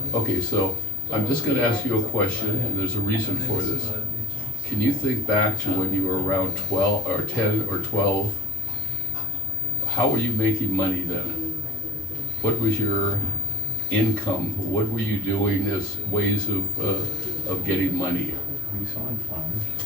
Okay, so I'm just going to ask you a question, and there's a reason for this. Can you think back to when you were around 12 or 10 or 12? How were you making money then? What was your income? What were you doing as ways of getting money? We saw in flowers.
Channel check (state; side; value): normal; both; correlation 0.49